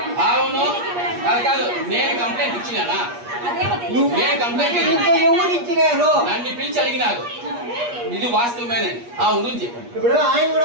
అవును కాదు, నేను కంప్లైంట్ ఇచ్చినానా? నేను కంప్లైంట్ ఎవరు ఇచ్చినారు? నన్ను పిలిచి అడిగినారు. ఇది వాస్తవమేనే. అవును చెప్పండి. ఇప్పుడు ఆయన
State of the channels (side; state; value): left; late; 8.4 ms